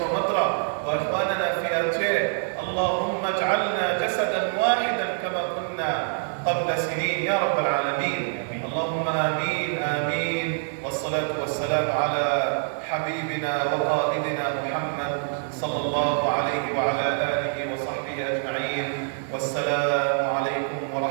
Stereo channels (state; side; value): silent; left; 55 dB below the other